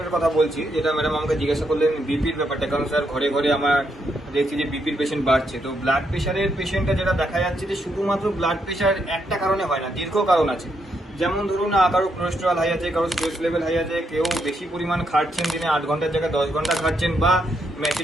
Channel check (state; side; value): normal; both; correlation 0.78